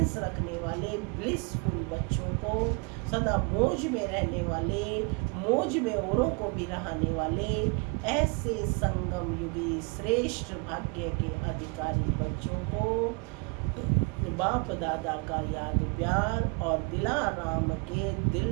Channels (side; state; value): left; quieter; 32.5 dB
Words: रखने वाले ब्लिसफुल बच्चों को, सदा मौज में रहने वाले, मौज में औरों को भी रहने वाले ऐसे संगम युगी श्रेष्ठ भाग्य के अधिकारी बच्चों को बाप दादा का याद प्यार और दिलाराम के